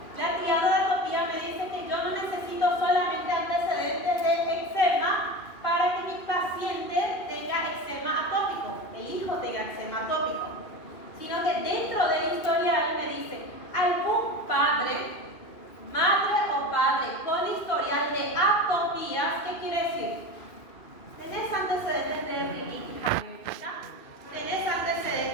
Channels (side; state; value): right; late; 2.5 ms